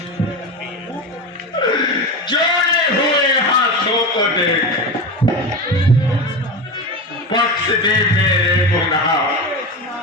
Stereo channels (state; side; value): normal; both; correlation 0.22